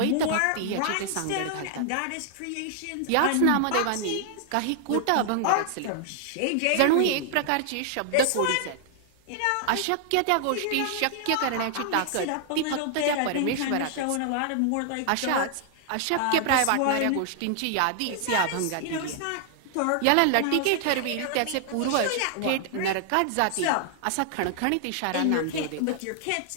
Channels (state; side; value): different; both; correlation 0.00